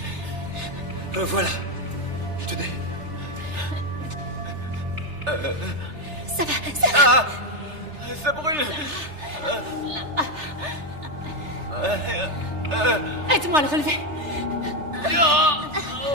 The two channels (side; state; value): left; late; 3.3 ms